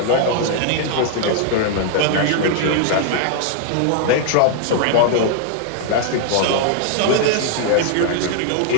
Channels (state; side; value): different; both; correlation 0.00